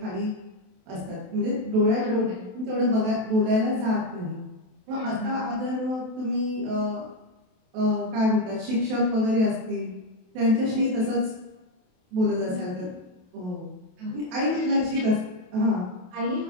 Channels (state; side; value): late; left; 27 ms